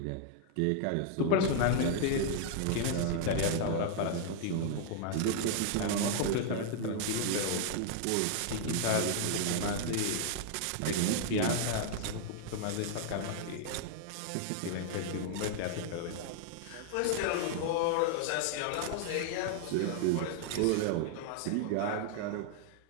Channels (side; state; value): both; different; correlation 0.00